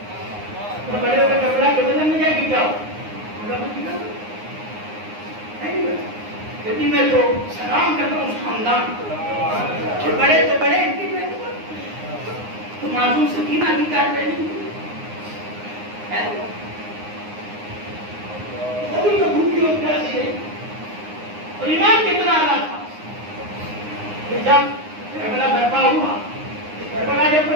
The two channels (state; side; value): late; left; 9.6 ms